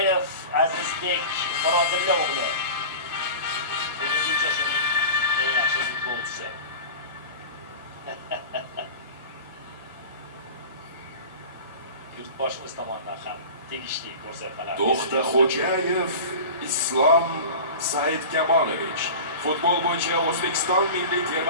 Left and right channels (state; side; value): inverted; both; correlation -0.34